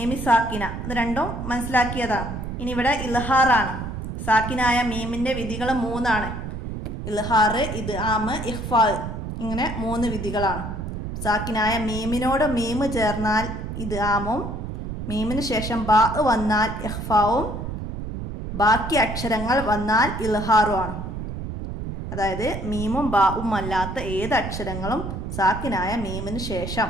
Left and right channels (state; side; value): noise; right; rumble, 6 dB below the sound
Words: സാക്കിന, ഇത് രണ്ടും മനസ്സിലാക്കിയതാണ്. ഇനി ഇവിടെ ഇൽഹാറാണ്. സാക്കിനായ മീമിൻ്റെ വിധികൾ 3ആണ്. ഇൽഹാർ, ഇദ്ആം, ഇഖ്ഫാ, ഇങ്ങനെ 3 വിധികളാണ്. സാക്കിനായ മീമിനോട് മീമ് ചേർന്നാൽ ഇദ്ആമും, മീമിന് ശേഷം ബാ വന്നാൽ ഇഖ്ഫാവും, ബാക്കി അക്ഷരങ്ങൾ വന്നാൽ ഇൽഹാറുമാണ്. അതായത് മീമും ബാവും അല്ലാത്ത ഏത് അക്ഷരങ്ങളും സാക്കിനായ മീമിന് ശേഷം